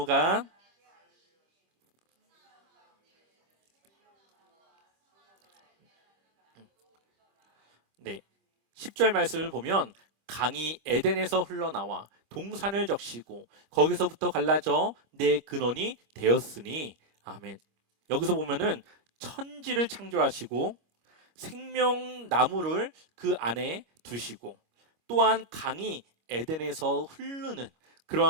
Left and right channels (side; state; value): left; late; 25 ms